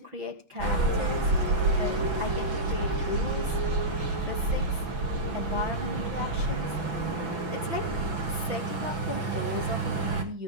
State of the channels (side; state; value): left; late; 6.0 ms